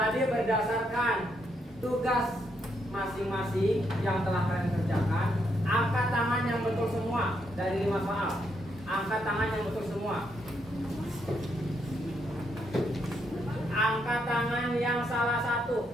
berdasarkan tugas masing-masing yang telah kalian kerjakan, angkat tangan yang betul semua dari 5 soal. Angkat tangan yang betul semua. Angkat tangan yang salah 1.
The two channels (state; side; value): normal; both; correlation 0.77